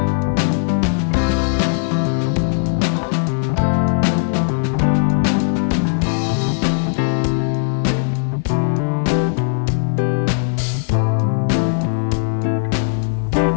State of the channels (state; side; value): silent; right; digital silence